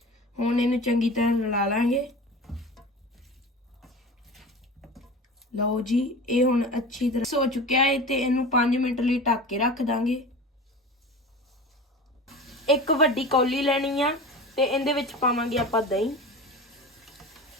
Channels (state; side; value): normal; both; correlation 0.33